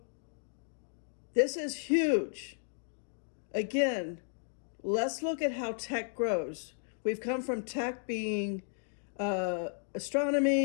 this is huge. Again, let's look at how tech grows. We've come from tech being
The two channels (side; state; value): right; silent; digital silence